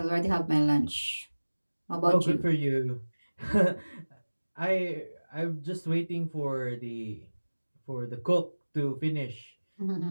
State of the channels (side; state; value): both; inverted; correlation -1.00